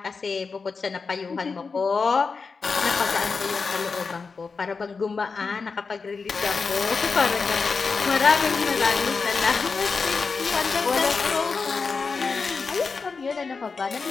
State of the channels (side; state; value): right; quieter; 4.8 dB